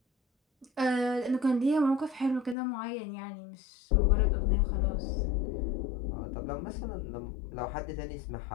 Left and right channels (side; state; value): right; drops out; at 2.6 s